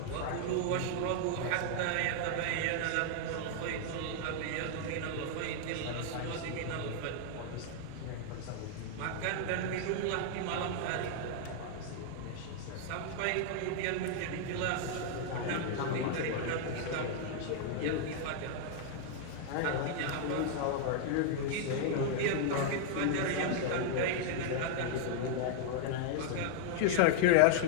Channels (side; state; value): both; different; correlation -0.01